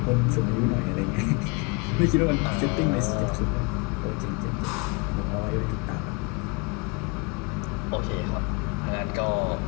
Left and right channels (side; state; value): right; quieter; 30.3 dB